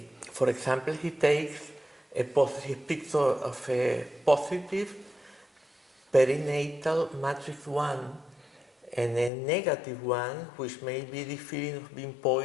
for example, he takes he speaks of a positive perinatal matrix 1 and a negative one, which may be the feeling of being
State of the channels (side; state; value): right; drops out; at 9.3 s